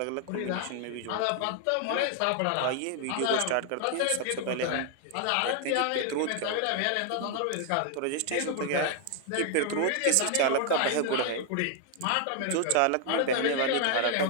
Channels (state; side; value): different; both; correlation 0.00